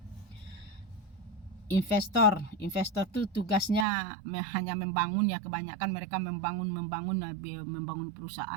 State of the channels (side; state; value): left; drops out; at 3.9 s